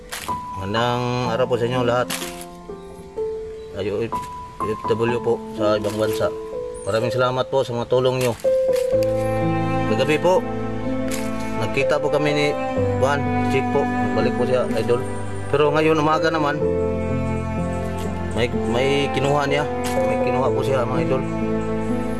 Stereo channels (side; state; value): both; identical; correlation 1.00